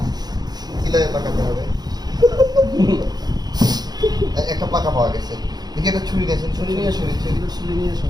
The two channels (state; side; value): late; left; 0.19 ms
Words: কিভাবে পাকাতে হবে? একটা পাকা পাওয়া গেছে। দেখি একটা ছুরি নিয়েছেন, ছুরি নিয়ে ছুরি ছুরি ছুরি নিয়ে